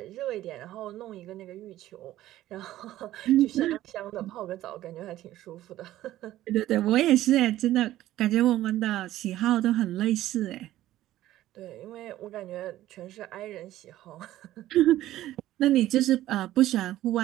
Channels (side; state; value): left; quieter; 14.4 dB